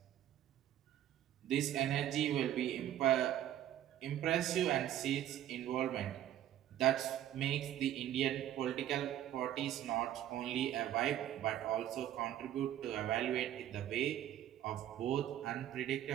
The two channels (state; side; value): quieter; left; 11.9 dB